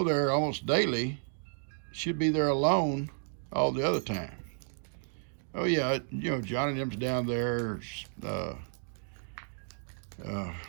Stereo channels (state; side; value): silent; left; digital silence